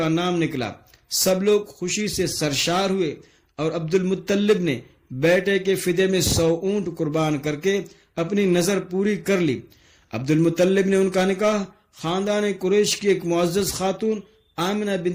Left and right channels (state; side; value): identical; both; correlation 1.00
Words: نام نکلا۔ سب لوگ خوشی سے سرشار ہوئے اور عبد المطلب نے بیٹے کے فدیے میں 100 اونٹ قربان کر کے اپنی نظر پوری کر لی۔ عبد المطلب نے ان کا نکاح خاندان قریش کی ایک معزز خاتون آمنہ